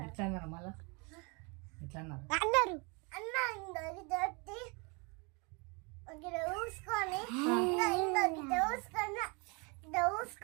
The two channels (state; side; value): quieter; left; 31.1 dB